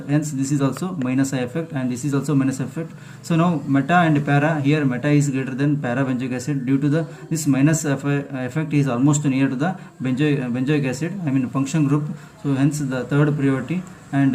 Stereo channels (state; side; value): identical; both; correlation 1.00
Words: hence this is also minus I effect and this is also minus effect. So now meta and para, here meta is greater than para benzoic acid due to the this minus effect is almost near to the benzoic acid, I mean function group. So hence the third priority,